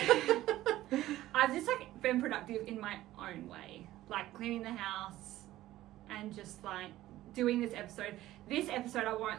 I've just like been productive in my own way. Like cleaning the house and just like doing this episode. This episode, I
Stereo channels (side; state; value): left; quieter; 15.2 dB